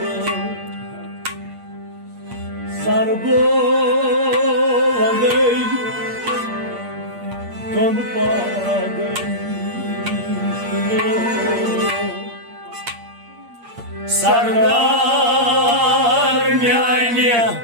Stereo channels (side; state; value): left; late; 8.6 ms